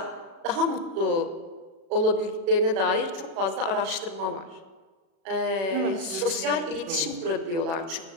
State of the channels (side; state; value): left; late; 36 ms